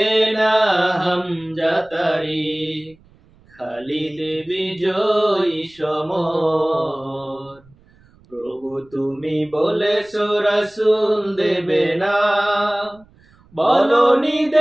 না হামজা তারিক, খালিদ বিজয়ী সমর। প্রভু তুমি বলেছো রাসূল দেবে না, বলনি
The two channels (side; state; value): right; noise; rumble, 30 dB below the sound